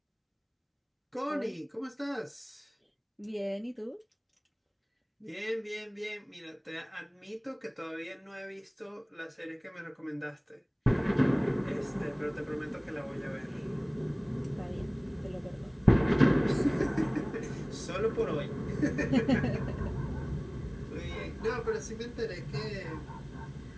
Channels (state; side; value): identical; both; correlation 1.00